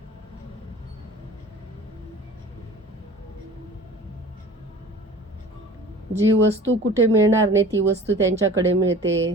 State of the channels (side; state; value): both; normal; correlation 0.42